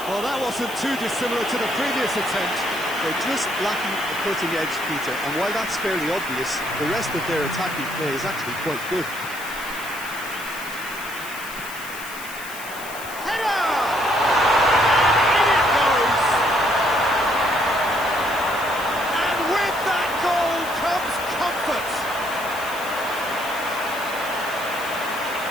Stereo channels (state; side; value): noise; left; hiss, 13 dB below the sound